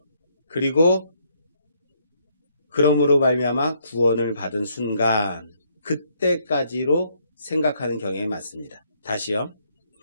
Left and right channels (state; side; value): inverted; both; correlation -0.71